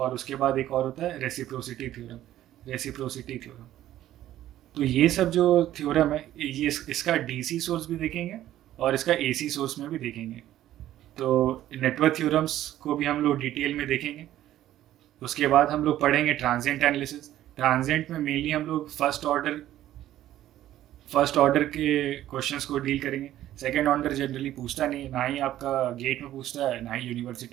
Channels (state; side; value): quieter; left; 13.1 dB